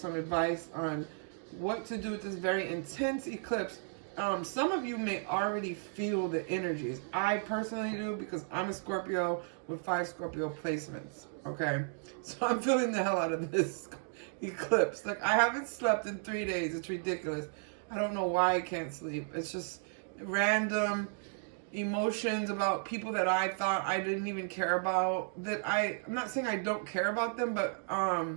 advice on what to do with this very intense eclipse. Some of you may already feel the energies. I personally do because I'm a Scorpio with 5 Scorpio placements. Okay? So I'm feeling the hell out of this eclipse. Like, I haven't slept in 3 days. It's ridiculous. I don't know why I can't sleep. It's just random emotions about people that I thought I didn't even care about. I'm not saying I don't care about them, but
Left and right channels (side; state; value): left; silent; 55 dB below the other